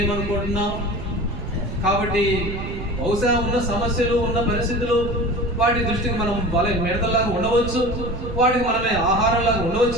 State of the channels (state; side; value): noise; right; rumble, 8 dB below the sound